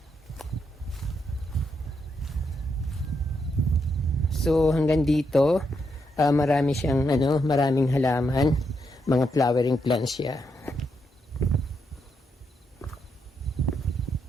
So hanggang dito, marami siyang maraming halaman, mga flowering plants siya.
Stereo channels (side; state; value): both; normal; correlation 0.80